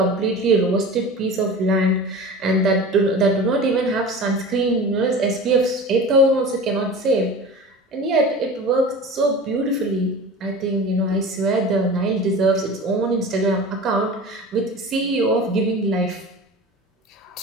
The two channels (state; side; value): normal; both; correlation 0.35